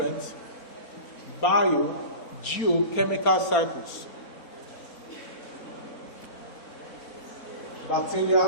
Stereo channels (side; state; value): right; late; 4.3 ms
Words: biogeochemical cycles. Bacteria